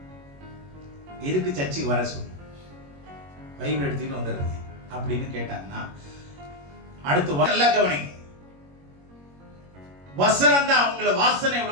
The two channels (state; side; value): late; left; 21 ms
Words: எதுக்கு சர்ச்சுக்கு வர சொல்லி பைபிள் எடுத்துட்டு வந்துடுறீங்க அப்படின்னு கேட்டாங்கன்னா அடுத்து நல்லா கவனிங்க. வசனம் தான் அவங்கள வாசனை